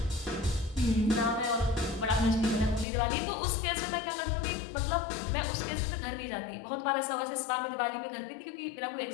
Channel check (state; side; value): drops out; right; at 2.9 s